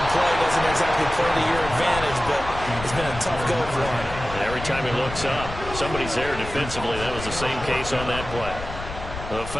play doesn't exactly play to your advantage, but it's been a tough go for him. And every time he looks up, somebody's there defensively. That was the same case on that play. The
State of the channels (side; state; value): left; noise; rumble, 10 dB below the sound